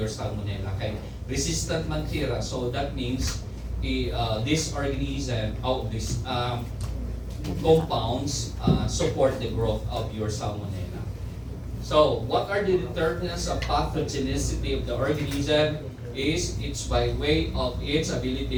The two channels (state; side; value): identical; both; correlation 1.00